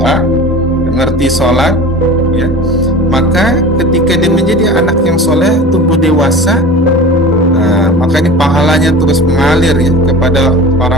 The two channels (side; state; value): both; normal; correlation 0.36